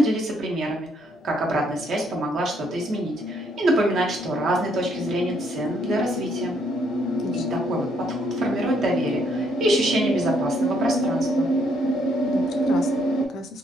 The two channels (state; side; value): normal; both; correlation 0.70